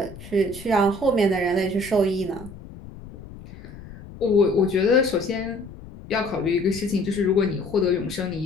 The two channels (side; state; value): left; noise; rumble, 16 dB below the sound